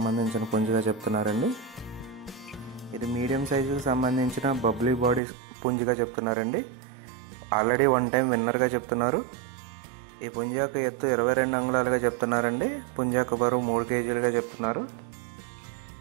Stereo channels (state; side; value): drops out; left; at 5.2 s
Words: పుంజుగా చెప్తున్నారండి. ఇది మీడియం సైజుకి సంబంధించిన బబ్లీ బాడీ పుంజుగా చెప్తున్నారండి. ఆల్రెడీ 1 టైం విన్నర్గా చెప్తున్నారు. ఈ పుంజు యొక్క ఎత్తు 22 అంగుళాలుగా చెప్తున్నారండి. పుంజు యొక్క బరువు 3 కేజీలుగా చెప్తున్నారు.